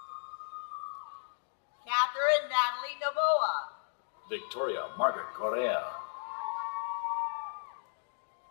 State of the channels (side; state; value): right; silent; digital silence